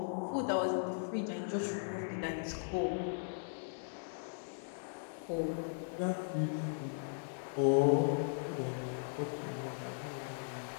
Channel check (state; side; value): silent; right; digital silence